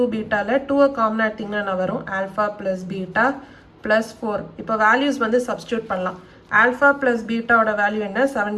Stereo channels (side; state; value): both; identical; correlation 1.00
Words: பீட்டாவில் 2 காமன் எடுத்திங்கன்னா என்ன வரும் ஆல்ஃபா ப்ளஸ் பீட்டா ப்ளஸ் 4. இப்போ வேல்யூஸ் வந்து சப்ஸ்டியூட் பண்ணலாம். ஆல்ஃபா ப்ளஸ் பீட்டாவோட வேல்யூ என்ன 7